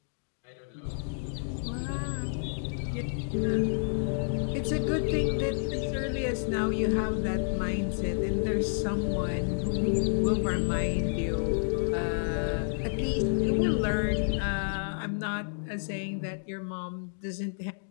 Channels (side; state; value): right; silent; digital silence